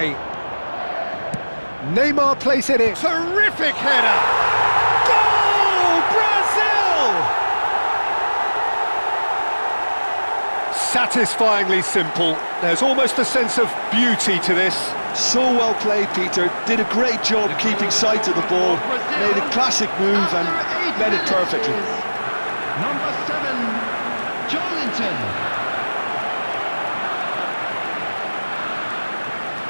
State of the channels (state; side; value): inverted; both; correlation -1.00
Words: Neymar plays it in. Terrific header! Satisfyingly simple. There's almost a sense of beauty to this. So well played, Peter. Did a great job keeping sight of the ball. Made a classic move and met it perfectly. Number 7, Joelinton.